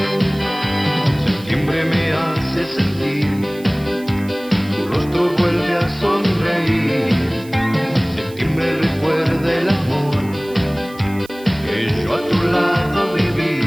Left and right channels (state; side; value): noise; right; hiss, 22 dB below the sound